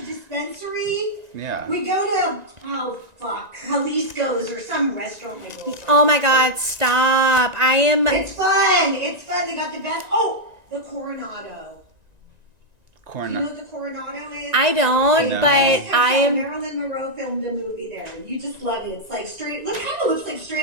dispensary. Yeah. We go to Jalisco's or some restaurant. We go to. Oh my God! Stop! It's fun. It's fun. They got the best. Oh, the Coronado. You know what the Coronado is? I don't, No. but I am. Marilyn Monroe filmed a movie there. You just love it. It's like straight. Look, kind of looks like straight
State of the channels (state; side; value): late; left; 1.9 ms